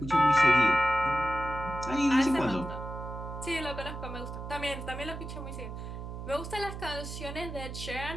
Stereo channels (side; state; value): right; noise; hum, 8 dB below the sound